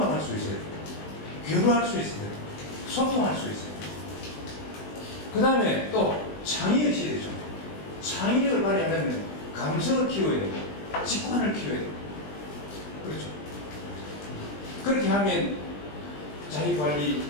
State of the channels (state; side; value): late; right; 20 ms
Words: 수 있어야 돼요. 교류할 수 있어야 돼요. 소통할 수 있어야 돼요. 그 다음에 또 창의의식이 되죠. 창의력을 발휘하려면 감성을 키워야 되고 직관을 키워야 되고 그렇죠. 그렇게 하면